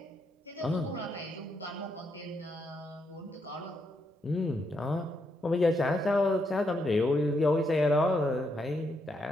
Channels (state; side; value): normal; both; correlation 0.79